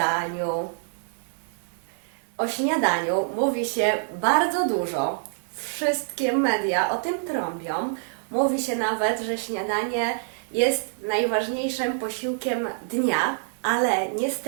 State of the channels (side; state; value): left; silent; digital silence